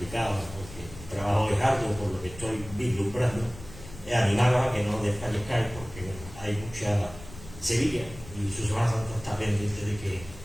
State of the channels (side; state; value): left; noise; rumble, 16 dB below the sound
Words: porque el trabajo es arduo por lo que estoy vislumbrando, animar a que no desfallezcáis porque hay mucha Sevilla y su Semana Santa está pendiente de que